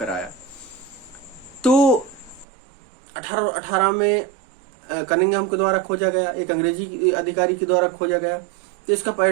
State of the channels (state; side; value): drops out; left; at 2.5 s